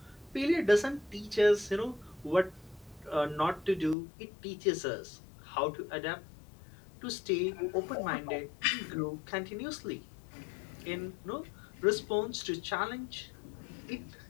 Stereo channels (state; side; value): drops out; right; at 4.0 s